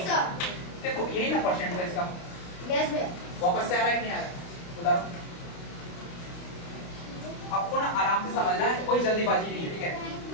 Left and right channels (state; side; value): late; right; 29 ms